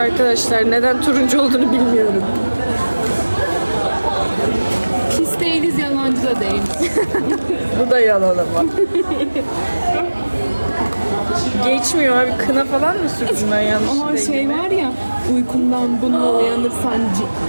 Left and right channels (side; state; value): both; inverted; correlation -1.00